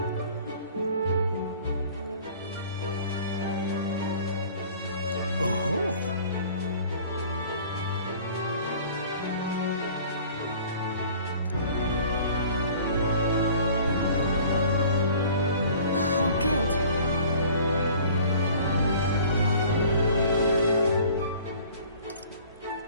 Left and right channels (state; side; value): inverted; both; correlation -0.49